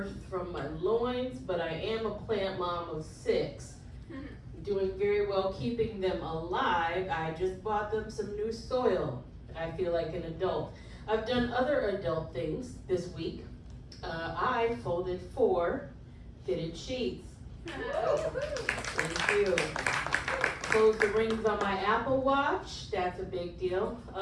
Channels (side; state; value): both; identical; correlation 1.00